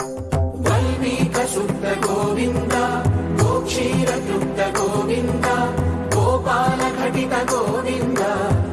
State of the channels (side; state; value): both; identical; correlation 1.00